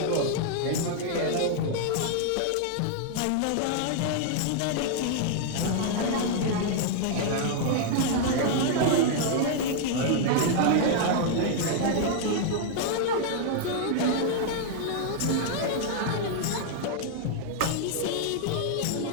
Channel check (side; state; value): both; different; correlation -0.01